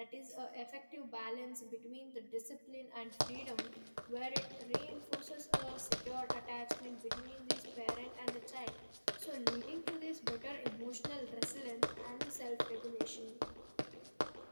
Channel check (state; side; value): inverted; both; correlation -1.00